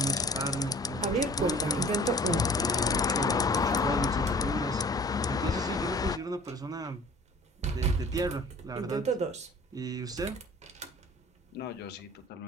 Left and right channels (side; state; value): both; normal; correlation 0.48